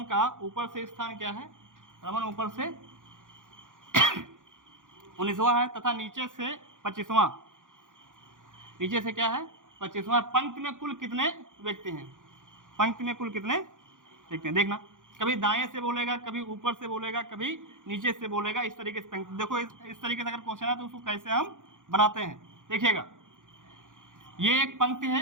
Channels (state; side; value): late; left; 0.88 ms